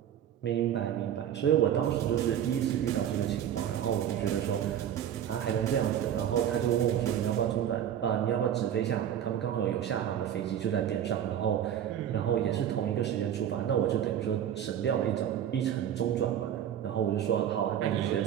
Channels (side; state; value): left; quieter; 10.0 dB